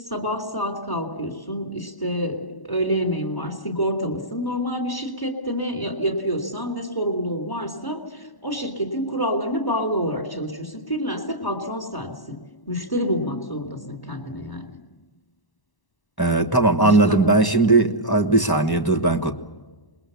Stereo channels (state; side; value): late; right; 1.0 ms